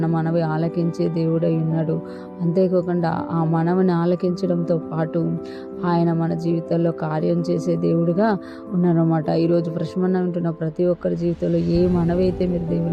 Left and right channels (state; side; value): identical; both; correlation 1.00